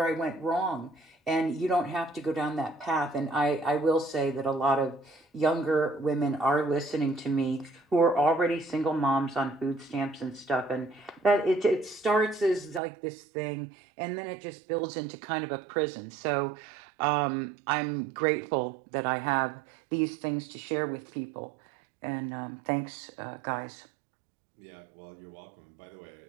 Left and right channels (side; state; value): left; drops out; at 12.8 s